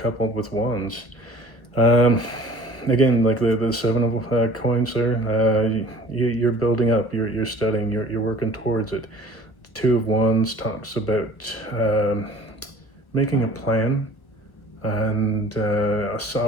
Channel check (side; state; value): right; late; 1.3 ms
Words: coupled with Wands. Again, like the Seven of Coins there, you're building up, you're studying, you're working towards it. Two of Wands talks about making a plan, and a